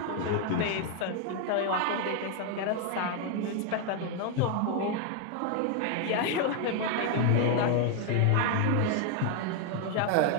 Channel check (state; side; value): different; both; correlation 0.00